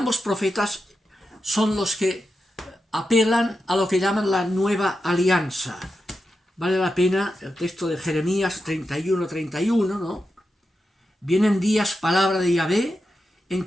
profetas son los que apelan a lo que llaman la nueva alianza. Vale la pena el texto de Jeremías 31:31, ¿no? Vienen días, palabra de Yahvé, en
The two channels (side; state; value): both; normal; correlation 0.89